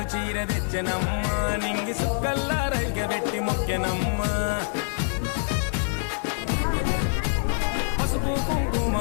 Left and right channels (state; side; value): silent; right; 61 dB below the other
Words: చీర తెచ్చనమ్మ నింగి సుక్కల్లా రైగబెట్టి మొక్కెనమ్మ పసుపు కుంకుమ